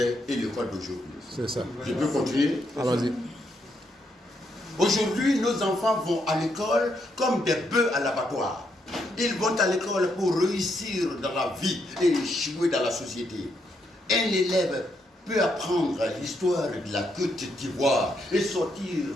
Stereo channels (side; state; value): both; normal; correlation 0.78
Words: et l'école d'aujourd'hui. C'est ça. Je peux continuer? Allons-y. Aujourd'hui, nos enfants vont à l'école comme des bœufs à l'abattoir. Ils vont à l'école pour réussir dans la vie et échouer dans la société. Un élève peut apprendre l'histoire de la Côte d'Ivoire et sortir,